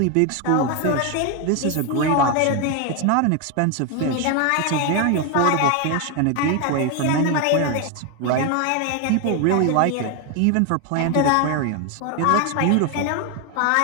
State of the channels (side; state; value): both; different; correlation 0.01